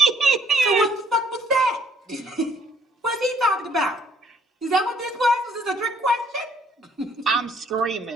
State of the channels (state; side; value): normal; both; correlation 0.63